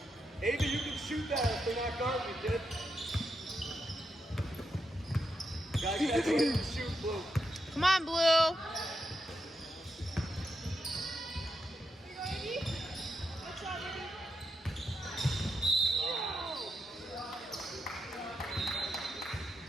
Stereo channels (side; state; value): both; normal; correlation 0.84